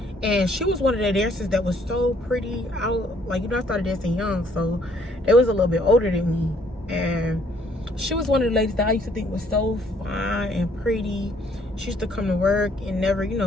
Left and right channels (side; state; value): both; normal; correlation 0.64